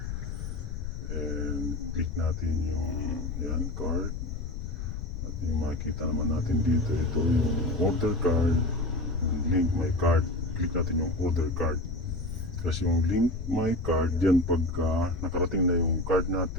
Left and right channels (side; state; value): left; noise; rumble, 6 dB below the sound